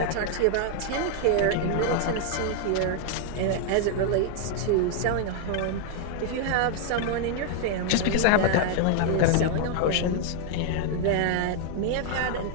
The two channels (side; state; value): both; different; correlation 0.00